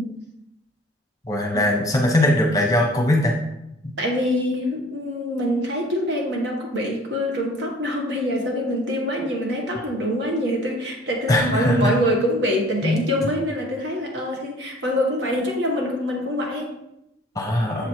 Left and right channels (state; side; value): normal; both; correlation 0.51